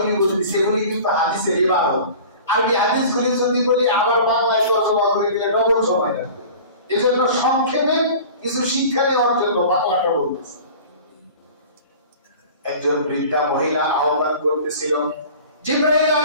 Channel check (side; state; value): both; inverted; correlation -0.41